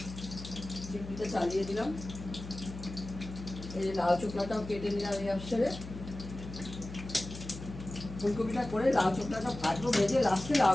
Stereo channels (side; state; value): left; noise; hum, 11 dB below the sound